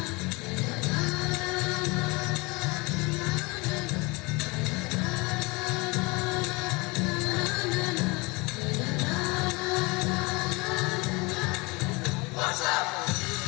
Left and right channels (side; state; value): right; quieter; 26.4 dB